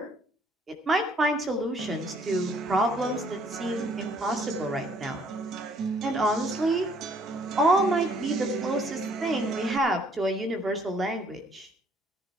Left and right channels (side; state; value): both; normal; correlation 0.63